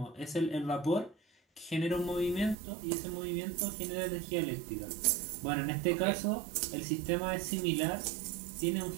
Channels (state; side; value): drops out; left; at 2.6 s